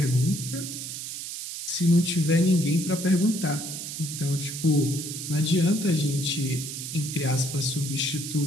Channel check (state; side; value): noise; right; hiss, 7 dB below the sound